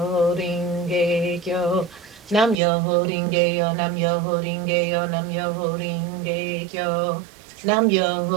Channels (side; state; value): left; drops out; at 2.6 s